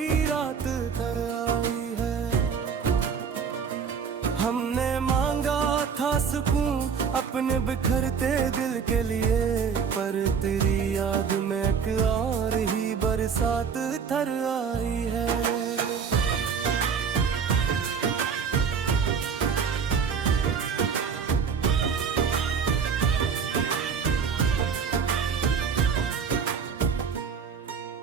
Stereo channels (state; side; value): quieter; left; 6.4 dB